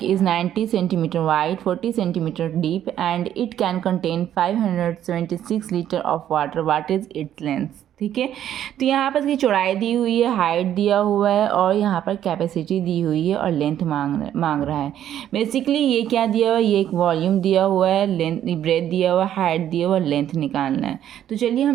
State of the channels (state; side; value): quieter; left; 10.9 dB